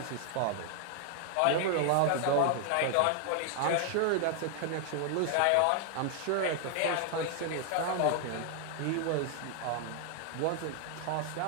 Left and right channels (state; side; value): different; both; correlation 0.00